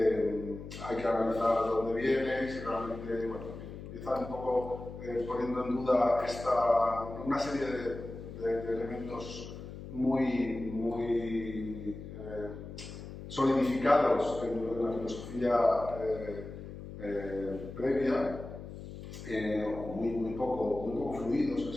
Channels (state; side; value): noise; left; hum, 11 dB below the sound